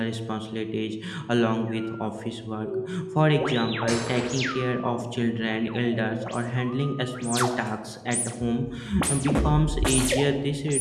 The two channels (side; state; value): both; identical; correlation 1.00